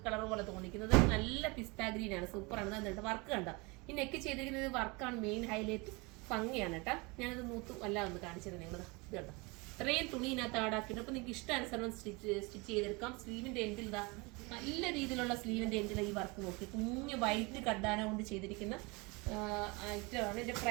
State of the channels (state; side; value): quieter; left; 27.0 dB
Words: കളർ പോലെ തോന്നിക്കുന്നത്. നല്ല പിസ്ത ഗ്രീൻ ആണ്. സൂപ്പറാണ്. എന്നിട്ട് വർക്ക് കണ്ടോ. ഈ നെക്ക് ചെയ്തിരിക്കുന്നത് വർക്കാണ് മെയിൻ ഹൈലൈറ്റ്. ഭംഗിയാണ് കേട്ടോ. ഞാനത് മൂത്ത് അല്ല ഒന്ന് കാണിച്ചത് നിങ്ങൾ. ഇത് കണ്ടോ, ഇത്രയും തുണി ഇതിനകത്ത് ആടാക്കിയിട്ട്. അപ്പൊ നിങ്ങൾക്ക് ഇഷ്ടാനുസരണം സ്റ്റിച്ച് ചെയ്തെടുക്കാം. സ്ലീവിന്റെ എൻഡിൽ ഇതാ നല്ല രീതിയിലുള്ള സ്ലീവിന്റെ എൻഡിൽ ഈ വർക്ക് നോക്കി കുഞ്ഞു വൈറ്റ് കഡ്ഡാന കൊണ്ട് ചെയ്തിരിക്കുന്ന ഐറ്റമാണ്. ഇതിന്റെ